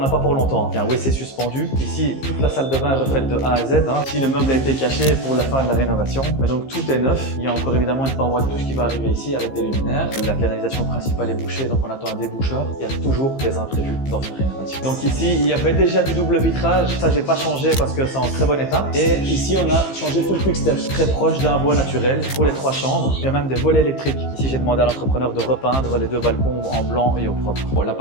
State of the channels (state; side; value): late; right; 15 ms